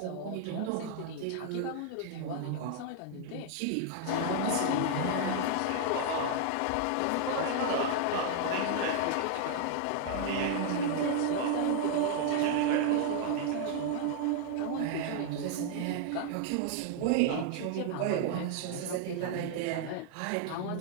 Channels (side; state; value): both; different; correlation 0.00